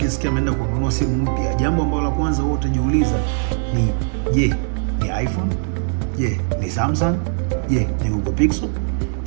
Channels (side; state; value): left; silent; digital silence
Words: ameenda kununua simu mpya, jambo ambalo la kwanza wewe utajiuliza ni je, ni iPhone? Je, ni Samsung? Je, ni Google Pixel?